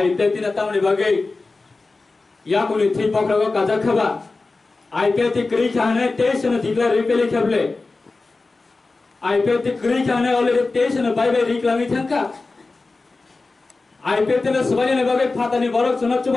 तिने तामने बागै या कुनै थि पक्रको काजा खबा आईपीएफ ति क्रि खाने तेसन दिगला रिपेले खबले आईपीएफ ति क्रि खाने already तेसन bye bye रिक्लामी thangka IPF तिने सबायने बागै फातानि बरक चुनाव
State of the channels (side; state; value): right; quieter; 3.6 dB